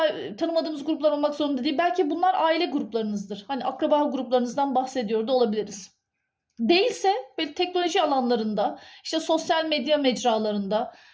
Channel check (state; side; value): identical; both; correlation 1.00